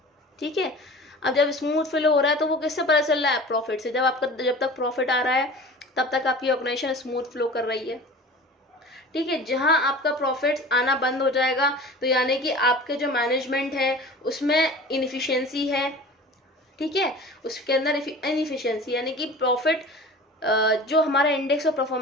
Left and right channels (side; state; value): both; normal; correlation 0.39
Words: ठीक है। अब जब स्मूथ फ्लो हो रहा है तो वो किससे पता चल रहा है, प्रॉफिट से। जब तक प्रॉफिट आ रहा है तब तक आपकी ऑर्गेनाइजेशन स्मूथ फ्लो कर रही है, ठीक है। जहां आपका प्रॉफिट आना बंद हो जाएगा तो यानी कि आपके जो मैनेजमेंट है उसमें इनएफिशिएंसी है, ठीक है, उसके अंदर इनएफिशिएंसी, यानी कि प्रॉफिट जो हमारा इंडेक्स ऑफ